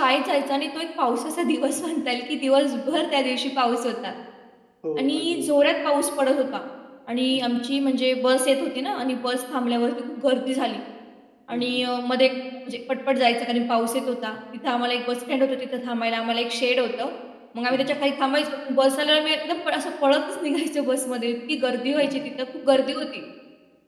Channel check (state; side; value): identical; both; correlation 1.00